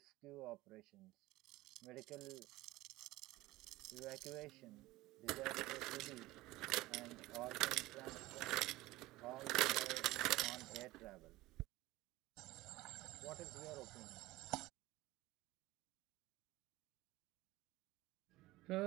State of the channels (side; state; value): left; quieter; 18.7 dB